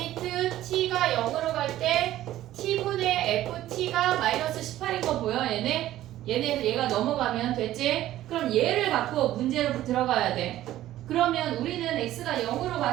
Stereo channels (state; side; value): quieter; left; 13.9 dB